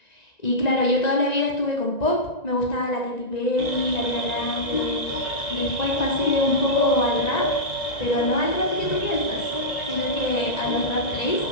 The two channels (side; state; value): right; late; 1.9 ms